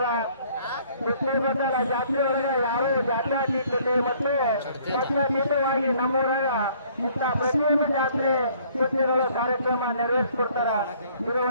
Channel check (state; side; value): inverted; both; correlation -0.59